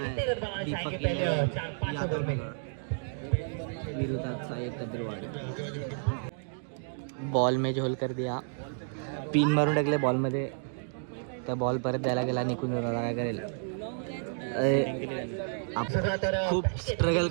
कितने आहे रन बनाना दीपक चाहेंगे पहले 4-5 ओवर यादव में. विरोधात सायद कद्रवाड. बॉल में झोल कर दिया. पिन मारून टाकले बॉल मध्ये. त्या बॉल परत द्यायला गेला निकुंज. दादा काय करेल. खूप स्ट्रगल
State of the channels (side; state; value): left; silent; digital silence